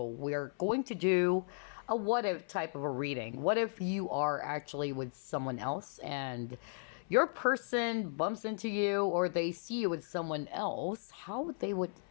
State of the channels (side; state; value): right; silent; 54 dB below the other